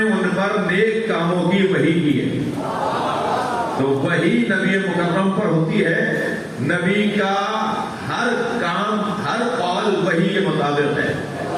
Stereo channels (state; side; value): identical; both; correlation 1.00